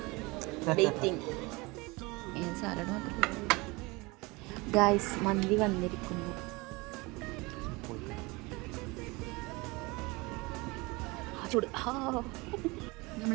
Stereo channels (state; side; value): quieter; left; 24.8 dB